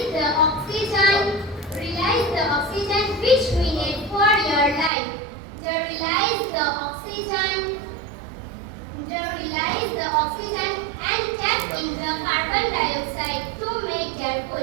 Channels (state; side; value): drops out; left; at 4.9 s